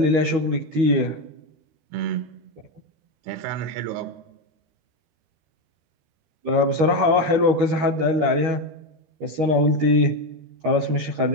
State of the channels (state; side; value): late; left; 13 ms